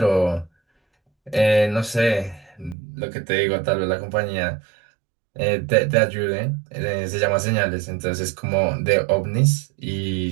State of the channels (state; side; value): drops out; left; at 2.8 s